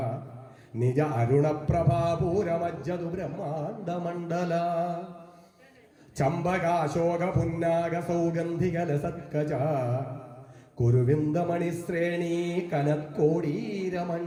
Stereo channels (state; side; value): identical; both; correlation 1.00